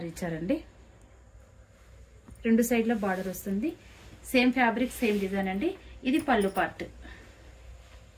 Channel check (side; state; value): both; identical; correlation 1.00